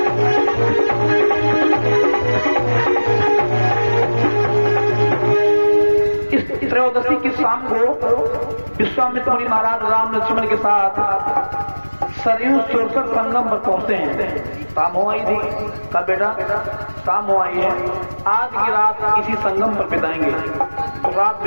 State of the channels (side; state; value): both; inverted; correlation -1.00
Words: इस त्रयोदशी की शाम को विश्वामित्र मुनि महाराज राम लक्ष्मण के साथ सरयू सुरसर संगम पर पहुंचते हैं। शाम हो आई थी, कब बेटा शाम हो आई है, आज की रात इसी संगम पर बिताएंगे। तो रात